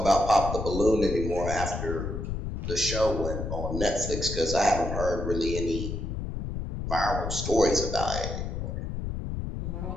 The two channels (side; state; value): left; noise; rumble, 4 dB below the sound